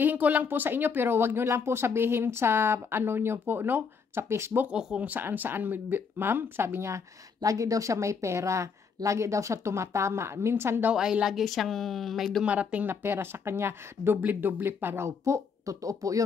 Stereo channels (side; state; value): right; quieter; 5.8 dB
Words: ko lang po sa inyo, pero wag nyo lang po sabihin sa ano nyo po, no? Sa Facebook o kung saan-saan, ma'am. Sabi niya, lagi daw siya may pera. Lagi daw siya tumatama. Minsan daw ay lagi siyang may dumarating na pera sa kanya. Doble-doble pa raw po. Totoo po